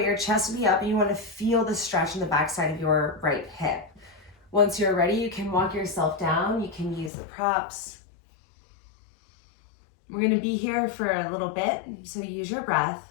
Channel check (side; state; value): right; drops out; at 7.1 s